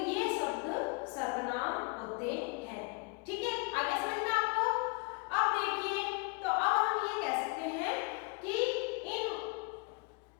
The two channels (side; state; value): right; quieter; 31.1 dB